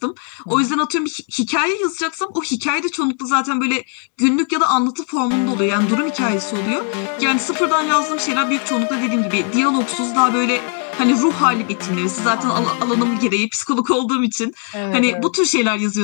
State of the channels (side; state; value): right; quieter; 39.0 dB